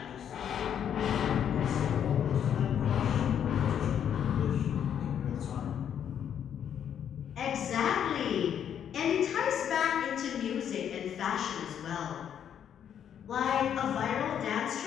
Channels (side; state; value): right; quieter; 9.0 dB